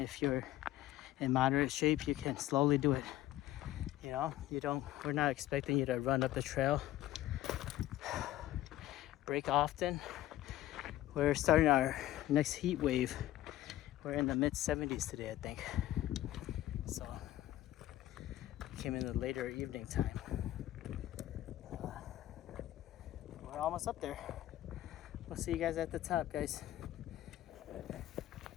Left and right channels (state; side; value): quieter; right; 14.3 dB